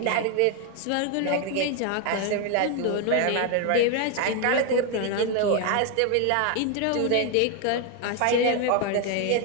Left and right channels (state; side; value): different; both; correlation 0.01